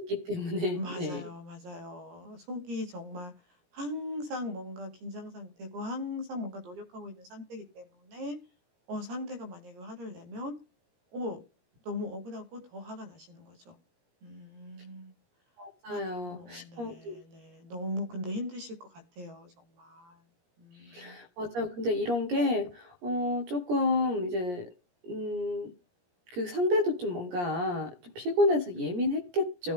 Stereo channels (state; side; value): late; left; 17 ms